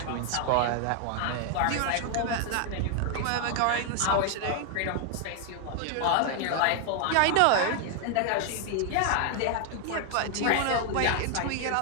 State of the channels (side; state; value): both; different; correlation 0.00